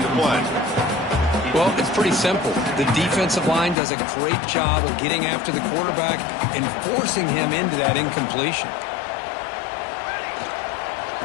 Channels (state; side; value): drops out; right; at 3.8 s